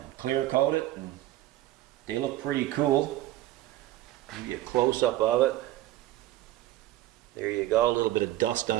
clear coated, and they look pretty cool. Give you a close-up of it. There you go, a little bit of dust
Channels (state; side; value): quieter; left; 15.0 dB